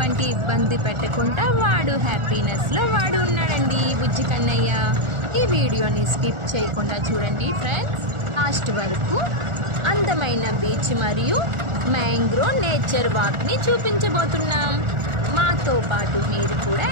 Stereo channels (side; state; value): left; late; 1.4 ms